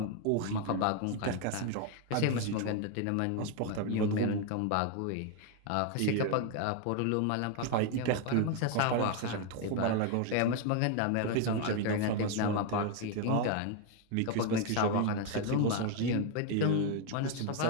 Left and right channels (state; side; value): different; both; correlation 0.01